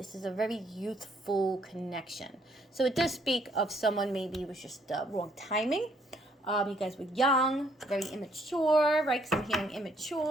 is a very youthful connection. So it does speak of someone maybe it was just wrong timing. You guys were young, very immature, right? Because I'm hearing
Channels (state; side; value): normal; both; correlation 0.67